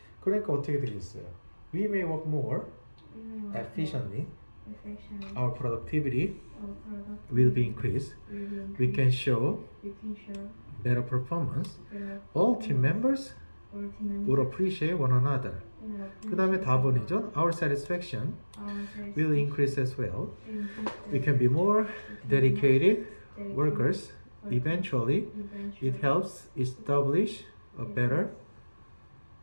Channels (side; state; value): both; inverted; correlation -1.00